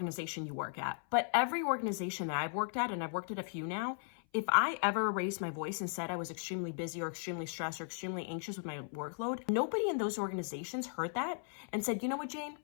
you work at, but every organization that I've worked at, and I've worked at a few now, if I ever raised my voice and said I was extremely busy or extremely stressed or extremely anxious with my workload, nobody in those organizations heard that and said, you know what, Jane,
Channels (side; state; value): right; silent; 53 dB below the other